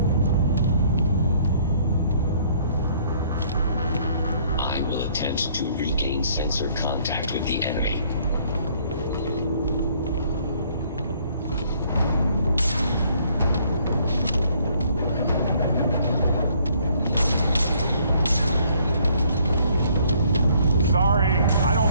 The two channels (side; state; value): both; inverted; correlation -0.63